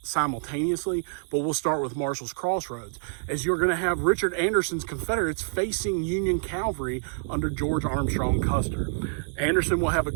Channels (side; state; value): left; silent; digital silence